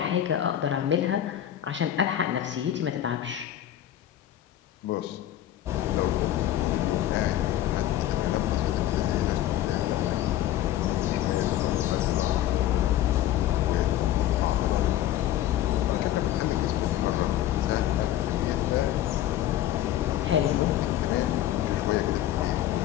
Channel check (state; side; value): quieter; right; 12.4 dB